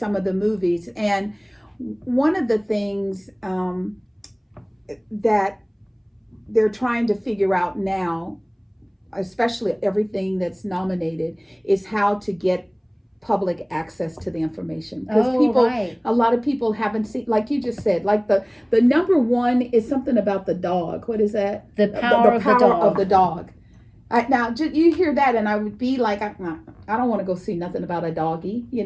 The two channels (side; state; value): both; identical; correlation 1.00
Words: of the movies. And one of the things that they're trying to figure out now, especially everything that's nominated, is how to get public access to the information, because a lot of people haven't seen, like you just said, like the number one is something about the dog. What is that? The power of the dog. Now you hear that and I would be like, I don't want to go see nothing about a doggy,